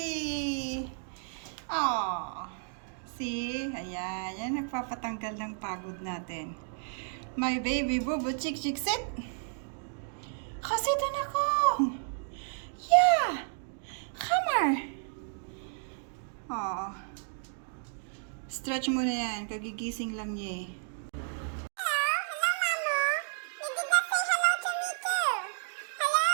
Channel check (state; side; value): silent; left; digital silence